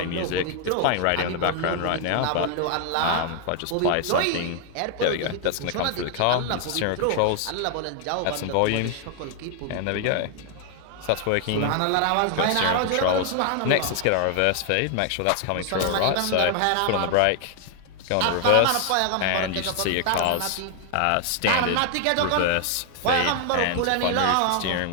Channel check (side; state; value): both; different; correlation 0.00